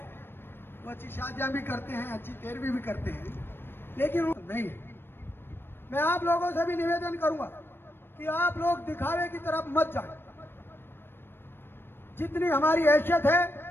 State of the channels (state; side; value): late; right; 0.10 ms